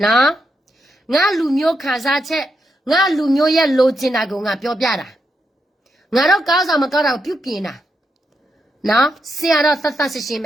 နော်ငါလူမျိုးခါစားချက်ငါလူမျိုးရဲ့လိုချင်တာကိုငါပြောပြတာငါတော့ကောင်းဆောင်မကောင်းတာကိုပြုပြင်တာနော်ဆရာတော့သတ်ရှင်းပ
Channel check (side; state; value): both; normal; correlation 0.83